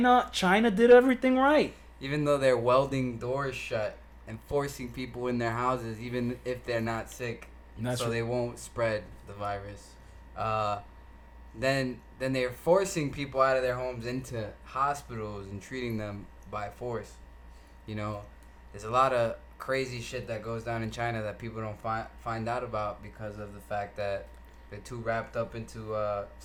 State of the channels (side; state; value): both; identical; correlation 1.00